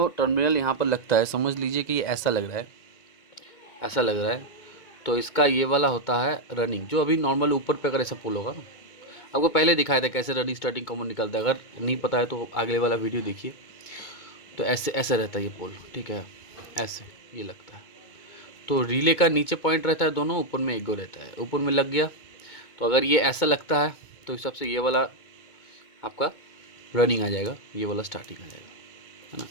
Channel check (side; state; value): right; late; 2.2 ms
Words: टर्मिनल यहाँ पर लगता है, समझ लीजिए कि ये ऐसा लग रहा है, ऐसा लग रहा है, तो इसका ये वाला होता है रनिंग। जो अभी नॉर्मल ऊपर पे अगर ऐसा पुल होगा ना, आपको पहले दिखाया था कैसे रनिंग स्टार्टिंग कॉमन निकलता है। अगर नहीं पता है तो अगले वाला वीडियो देखिए, तो ऐसे ऐसे रहता है ये पोल, ठीक है, ऐसे ये लगता है। तो रिले का नीचे पॉइंट रहता है दोनों, ऊपर में एक गो रहता है, ऊपर में लग गया। तो अगर ये ऐसा लगता है तो इस हिसाब से ये वाला आपका रनिंग आ जाएगा, ये वाला स्टार्टिंग आ जाएगा, है ना।